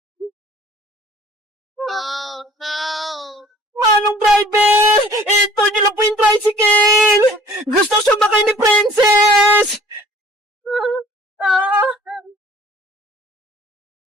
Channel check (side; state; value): both; normal; correlation 0.52